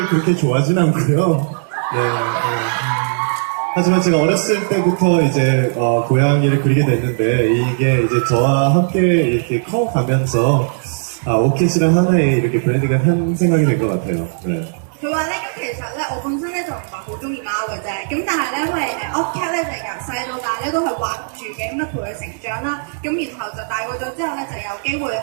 그렇게 좋아하진 않고요. 네, 하지만 제가 어렸을 때부터 이제 고양이를 그리게 됐는데 이게 이제 저와 함께 이렇게 커가면서 오켓이란 하나의 이렇게 브랜드가 한 생각이 된 것 같아요. 네. 佢話咧，咁其實咧，我本身咧就唔係好中意貓嘅啫，咁但係咧，因為Ocat 咧就由細到大咧都係畫住嘅，咁啊陪佢成長啦，咁然後就大個咗之後咧，就有機會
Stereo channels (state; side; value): silent; left; digital silence